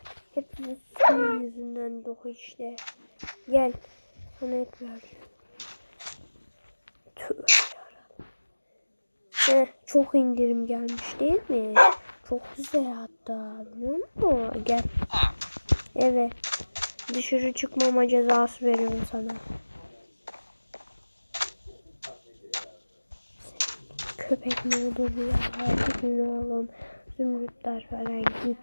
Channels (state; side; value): inverted; both; correlation -1.00